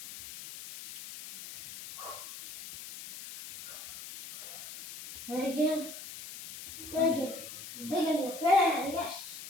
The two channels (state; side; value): noise; left; hiss, 12 dB below the sound